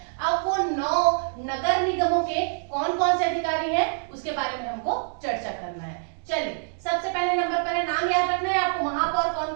अब वो 9 नगर निगमों के कौन कौन से अधिकारी हैं उसके बारे में हमको चर्चा करना है। चलिए सबसे पहले नंबर पर है, नाम याद रखना है आपको, महापौर कौन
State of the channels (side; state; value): left; silent; digital silence